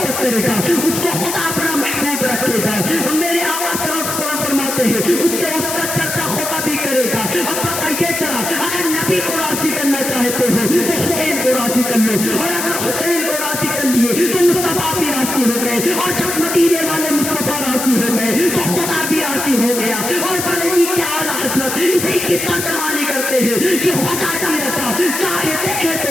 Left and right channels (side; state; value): left; noise; hiss, 4 dB below the sound